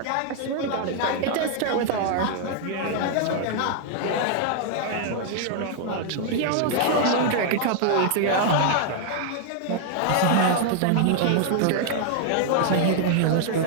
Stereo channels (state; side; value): different; both; correlation -0.01